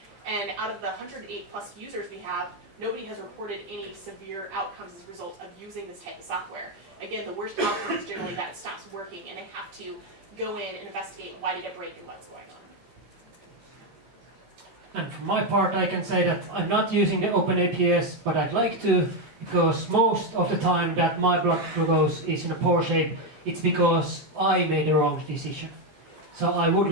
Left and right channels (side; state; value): left; late; 14 ms